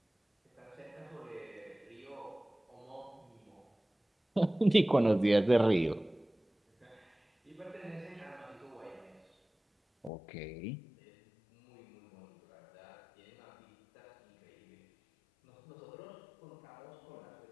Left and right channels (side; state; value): right; drops out; at 10.1 s